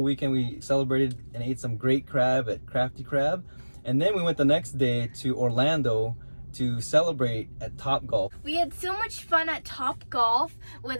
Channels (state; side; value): inverted; both; correlation -1.00